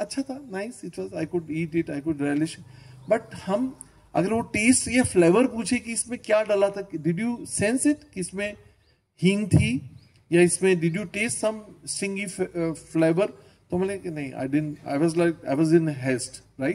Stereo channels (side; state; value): both; identical; correlation 1.00